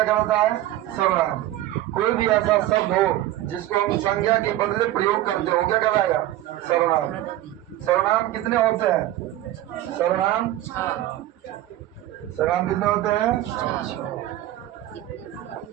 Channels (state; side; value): quieter; left; 14.4 dB